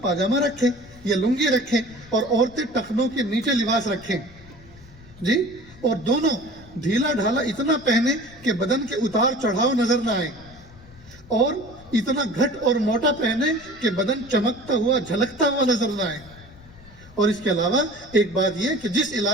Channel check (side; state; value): left; noise; rumble, 22 dB below the sound